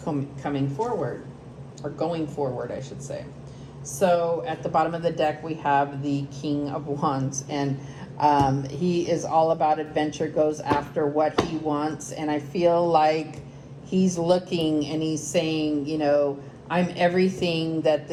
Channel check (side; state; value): both; identical; correlation 1.00